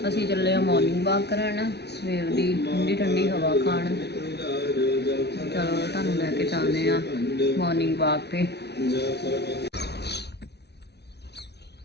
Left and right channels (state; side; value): late; right; 0.49 ms